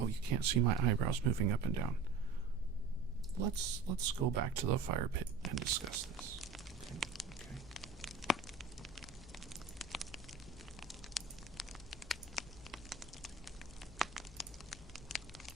you can't see my eyebrows moving up and down. Let's go back to the fire pit and discuss this. Okay.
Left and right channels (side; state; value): left; quieter; 4.6 dB